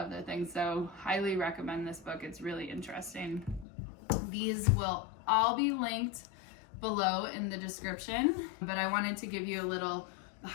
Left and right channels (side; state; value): right; drops out; at 3.7 s